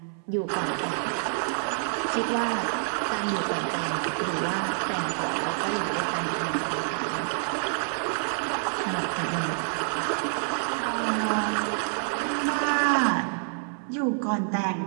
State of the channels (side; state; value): left; silent; 60 dB below the other